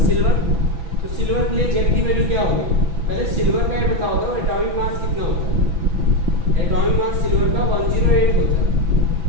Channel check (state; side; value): late; left; 6.0 ms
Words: सिल्वर। तो सिल्वर के लिए जेड की वैल्यू क्या होगी? पहले सिल्वर का ये बताओ दो, एटॉमिक मास कितना होता है? एटॉमिक मास सिल्वर का 108 होता है।